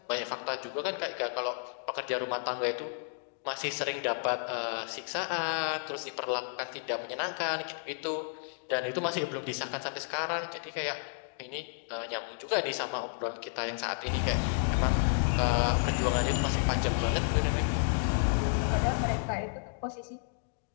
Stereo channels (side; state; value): right; silent; digital silence